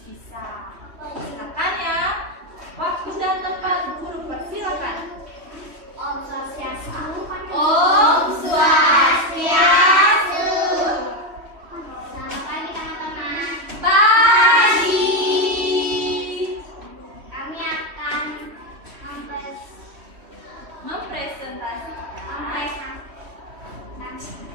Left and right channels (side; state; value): left; late; 3.1 ms